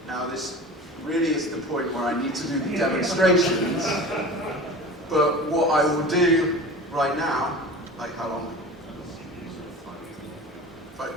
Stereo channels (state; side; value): normal; both; correlation 0.36